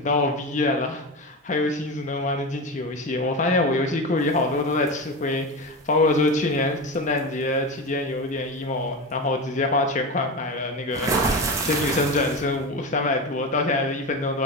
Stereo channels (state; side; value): normal; both; correlation 0.21